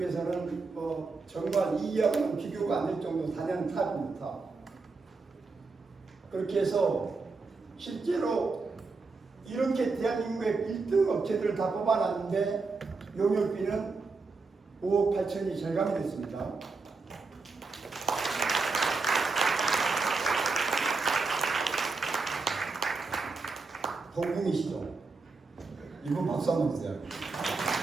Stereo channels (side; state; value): left; quieter; 4.1 dB